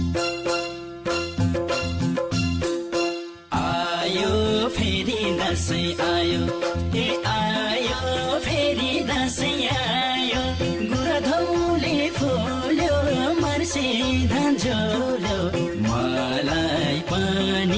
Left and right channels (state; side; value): identical; both; correlation 1.00